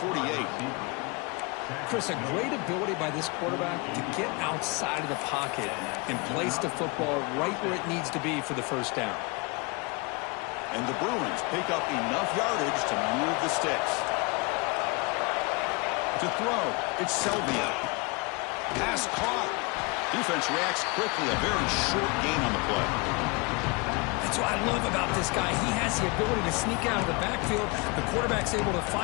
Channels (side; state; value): right; quieter; 28.8 dB